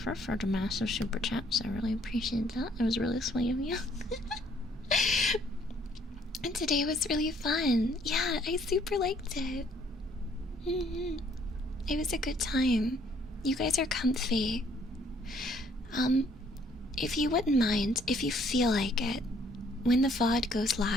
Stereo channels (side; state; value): both; normal; correlation 0.64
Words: for the massive super chats. I really appreciate that. It was really sweet of you. And today was really fun. Yeah, I super liked it. It was a good time. You guys are comfy. If you wouldn't mind, if you feel like it, when the VOD goes